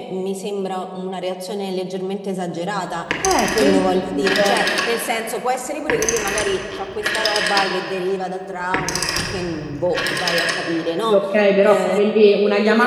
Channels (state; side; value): identical; both; correlation 1.00